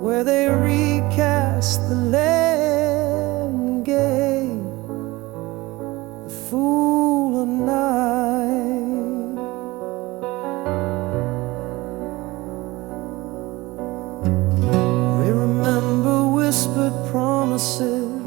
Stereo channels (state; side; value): quieter; left; 20.8 dB